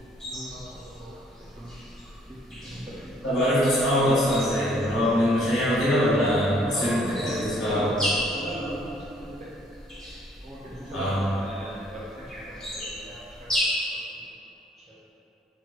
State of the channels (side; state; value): both; normal; correlation 0.62